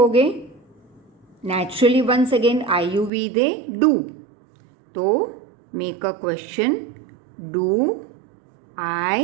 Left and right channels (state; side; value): drops out; left; at 3.1 s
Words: Naturally once again I, you, we, they, do. तो make a question, do I